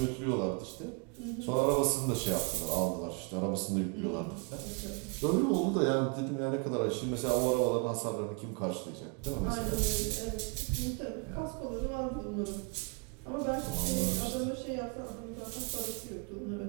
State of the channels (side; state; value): left; quieter; 34.1 dB